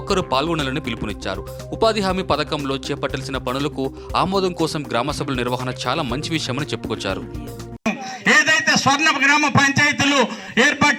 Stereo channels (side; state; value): both; identical; correlation 1.00